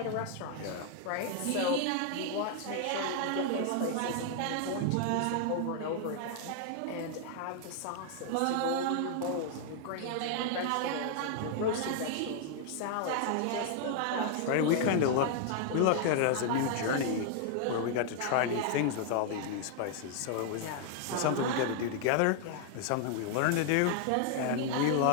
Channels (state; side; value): different; both; correlation 0.00